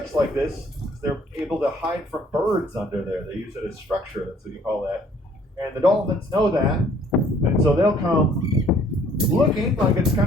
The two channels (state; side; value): normal; both; correlation 0.60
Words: like this. They're able to hide from birds under there. They use it as structure. That's what you call that. And the dolphins know that. And so they'll come looking like it's